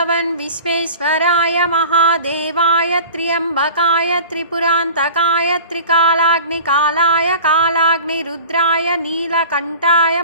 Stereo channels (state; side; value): inverted; both; correlation -0.41